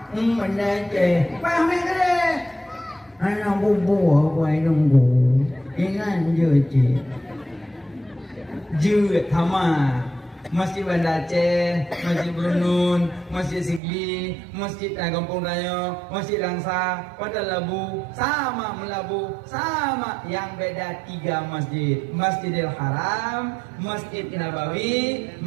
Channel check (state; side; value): drops out; left; at 13.8 s